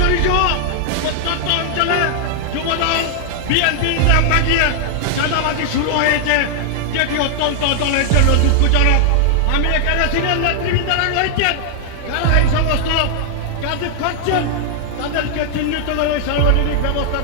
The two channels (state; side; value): different; both; correlation -0.01